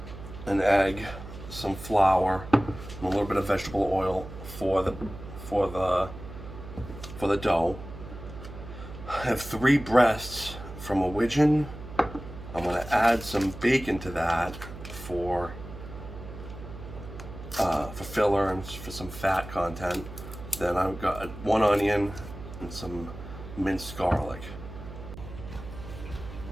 an egg, some flour, and a little bit of vegetable oil for the dough. I have 3 breasts from a widgeon. I'm going to add some bacon to that for filler and for some fat content. Then I've got 1 onion and some minced garlic.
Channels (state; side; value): noise; right; hum, 12 dB below the sound